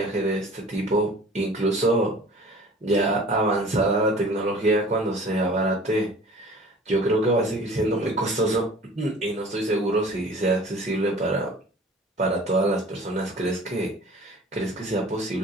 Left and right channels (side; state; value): both; normal; correlation 0.46